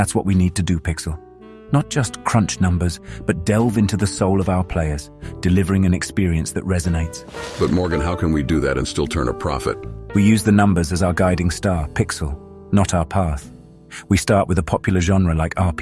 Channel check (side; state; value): both; identical; correlation 1.00